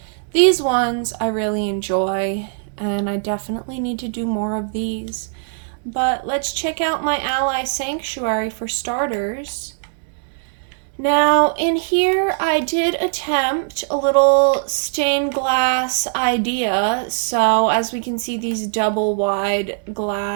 these ones I really enjoy, and I definitely need to do more of these. But let's check out my ally sanctuary for starters. Now, in here, I did attempt a little stained glass idea. So, as we can see, these double wide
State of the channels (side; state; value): left; silent; digital silence